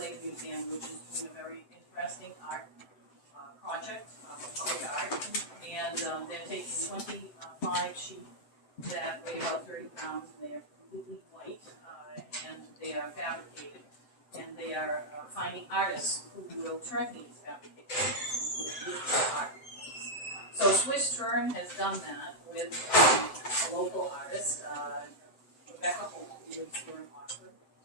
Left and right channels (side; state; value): right; late; 7.7 ms